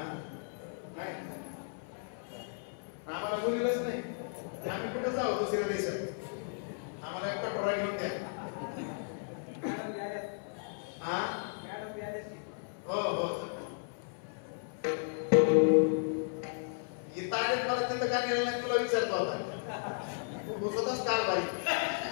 नाही. आम्हाला बोललेलंच नाही. आम्ही कुठं जाऊ दुसऱ्या देशात? आम्हाला एक कटोरा घेऊन द्या. हा हो हो. इथं आले मला तिथं का गेलं नाही तुला विचारतो आता. तू स्वतःच कारभारी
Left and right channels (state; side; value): silent; right; 55 dB below the other